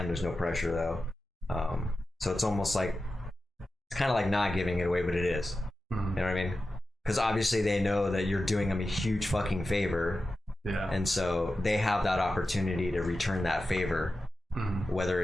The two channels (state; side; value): normal; both; correlation 0.93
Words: There's no pressure though. So it's almost like, it's kind of like not giving it away, but it is. You know what I mean? Because obviously they know that you're doing them a huge fucking favor. Yeah. And so they have that opportunity to return that favor. Whether